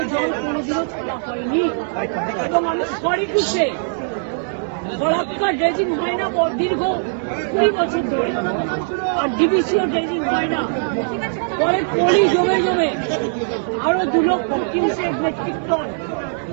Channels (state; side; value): silent; left; 61 dB below the other